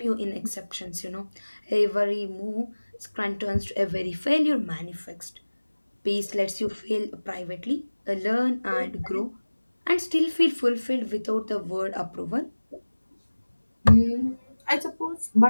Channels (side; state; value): both; inverted; correlation -1.00